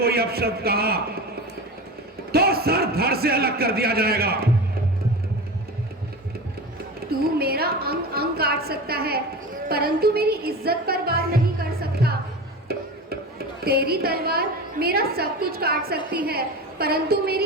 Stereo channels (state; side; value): normal; both; correlation 0.29